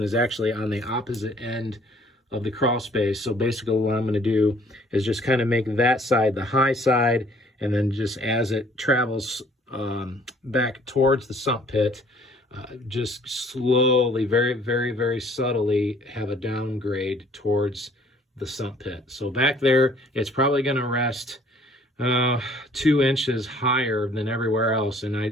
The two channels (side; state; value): both; normal; correlation 0.57